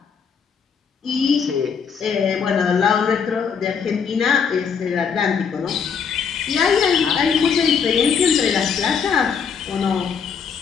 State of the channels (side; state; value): right; quieter; 6.5 dB